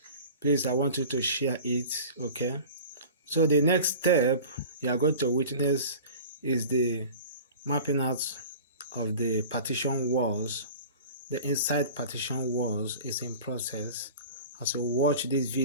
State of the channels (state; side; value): inverted; both; correlation -0.39